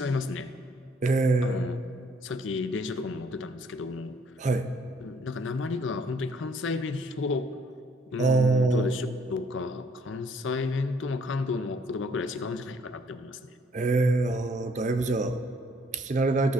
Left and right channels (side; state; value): both; normal; correlation 0.64